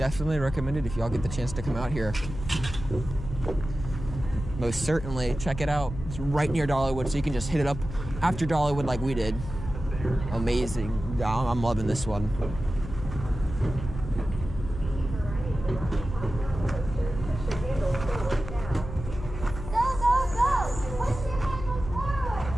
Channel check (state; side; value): noise; left; hum, 9 dB below the sound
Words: recommend it if y'all get the chance to come out here. Most certainly. Check it out. It's right near Dollywood, so you can just hit it up after Dollywood like we did. Amazing. I'm loving this one.